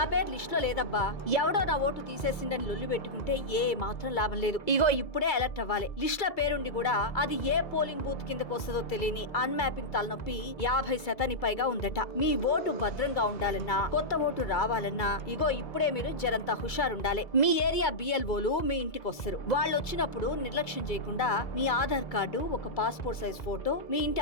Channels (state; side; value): late; right; 2.3 ms